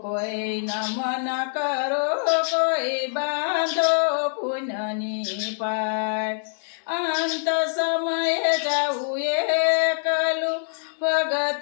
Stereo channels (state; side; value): silent; right; digital silence